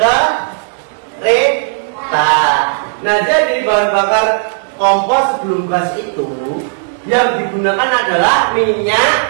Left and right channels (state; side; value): silent; left; digital silence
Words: Kereta. Nah, jadi bahan bakar kompor sebelum gas itu yang digunakan adalah minyak